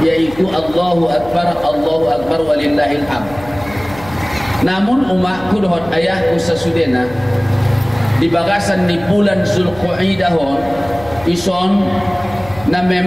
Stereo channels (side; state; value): left; noise; hum, 18 dB below the sound